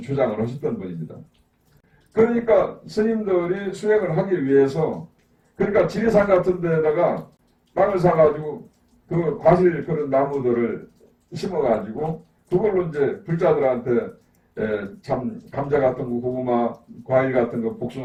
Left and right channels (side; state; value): both; identical; correlation 1.00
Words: 주장을 하셨던 분입니다. 그러니까 스님들이 수행을 하기 위해서 그러니까 지리산 같은 데다가 땅을 사가지고 그 과실 그런 나무들을 심어가지고 그걸로 이제 불자들한테 참 감자 같은 거, 고구마, 과일 같은 거,